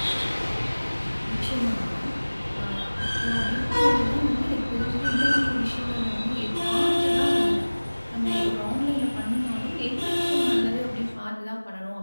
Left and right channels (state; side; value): inverted; both; correlation -1.00